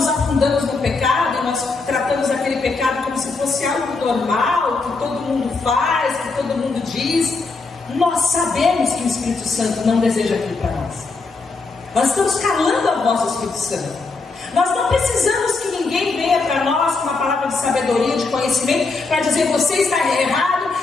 afundamos no pecado, e nós tratamos aquele pecado como se fosse algo normal, que todo mundo faz, que todo mundo diz, nós sabemos que o Espírito Santo não deseja aquilo para nós. Nós estamos calando a voz do Espírito Santo. Nós não precisamos que ninguém venha para nós com uma palavra de sabedoria, de conhecimento, para dizer você está errado,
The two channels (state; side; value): quieter; right; 4.0 dB